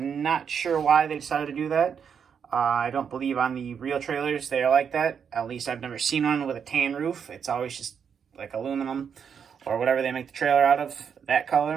not sure why they decided to do that. I don't believe on the real trailers they are like that. At least I've never seen one with a tan roof. It's always just like aluminum or whatever they make the trailer out of, that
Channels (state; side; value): quieter; left; 7.2 dB